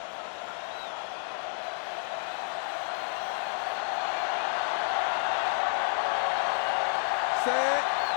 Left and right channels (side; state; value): right; silent; 58 dB below the other